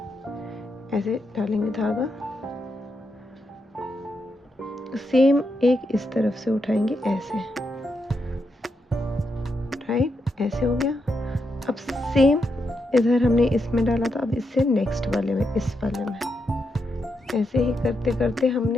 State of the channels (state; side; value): normal; both; correlation 0.83